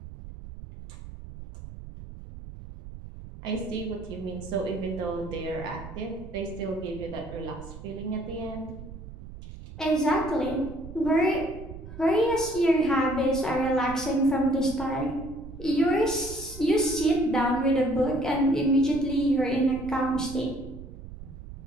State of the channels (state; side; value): noise; right; rumble, 13 dB below the sound